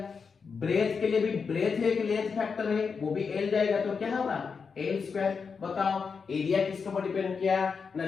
ब्रेथ के लिए भी ब्रेथ है, लेंथ फैक्टर है, वो भी एल जाएगा, तो क्या होगा एल स्क्वायर। बताओ एरिया किसके ऊपर डिपेंड किया ना,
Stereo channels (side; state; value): right; quieter; 5.5 dB